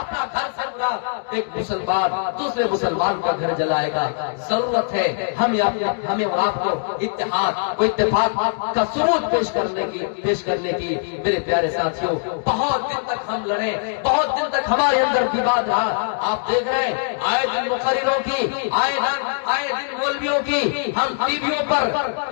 گھر سے برا ایک مسلمان دوسرے مسلمان کا گھر جلائے گا. ضرورت ہے ہمیں اور آپ کو اتحاد و اتفاق کا ثبوت پیش کرنے کی. میرے پیارے ساتھیوں بہت دن تک ہم لڑے, بہت دن تک ہمارے اندر وواد رہا. آپ دیکھ رہے ہیں آئے دن مقرروں کی, آئے دن مولویوں کی, ہم ٹی ویوں پر,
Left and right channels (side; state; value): right; silent; digital silence